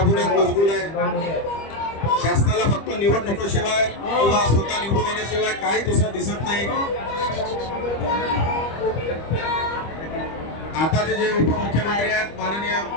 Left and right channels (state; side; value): late; right; 25 ms